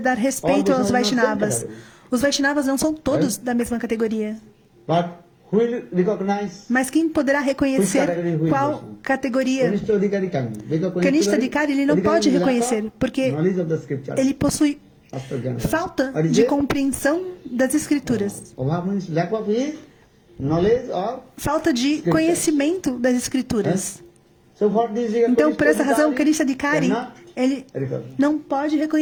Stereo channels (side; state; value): both; identical; correlation 1.00